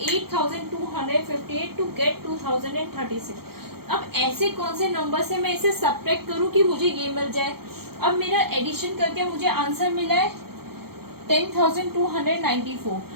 8,258 to get 2036। अब ऐसे कौन से नंबर से मैं इसे सब्ट्रैक्ट करूं कि मुझे ये मिल जाए। अब मेरा एडिशन करके मुझे आंसर मिला है 10,294।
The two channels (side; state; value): left; late; 0.95 ms